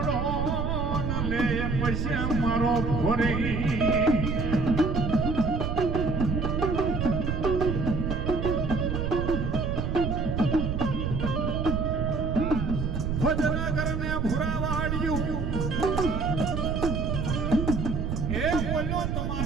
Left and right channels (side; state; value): right; noise; rumble, 1 dB below the sound